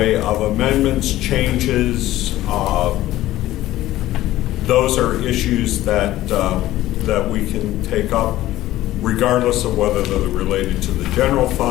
of amendments, changes, those are issues that we can take up regardless of whether they're related to the general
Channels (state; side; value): quieter; right; 15.2 dB